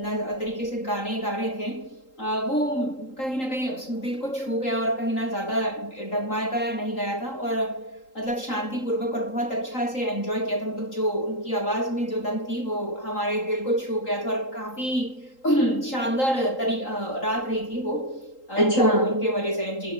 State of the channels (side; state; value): right; late; 3.8 ms